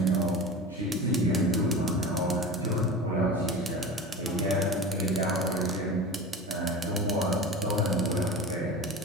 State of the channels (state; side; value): normal; both; correlation 0.31